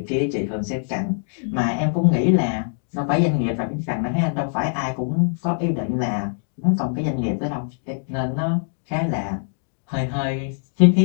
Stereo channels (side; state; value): right; silent; digital silence